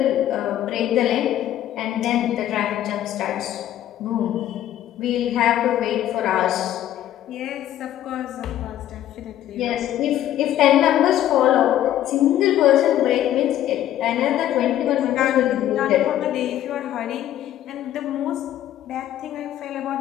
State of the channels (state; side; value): quieter; right; 12.3 dB